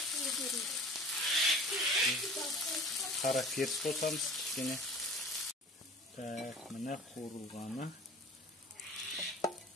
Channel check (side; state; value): both; normal; correlation 0.43